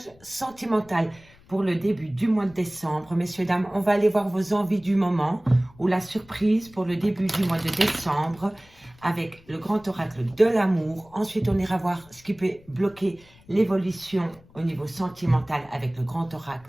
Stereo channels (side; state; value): left; noise; rumble, 26 dB below the sound